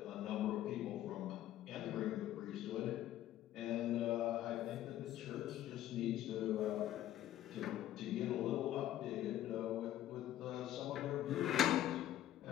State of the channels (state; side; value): quieter; right; 12.7 dB